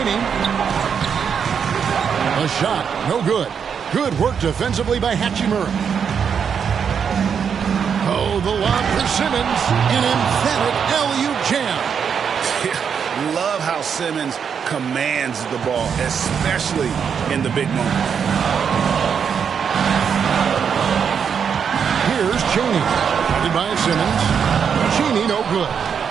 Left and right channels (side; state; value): left; quieter; 7.1 dB